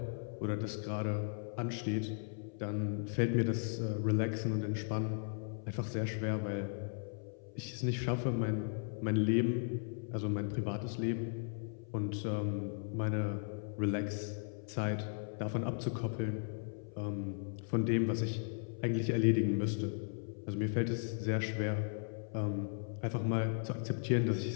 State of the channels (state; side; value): silent; right; 53 dB below the other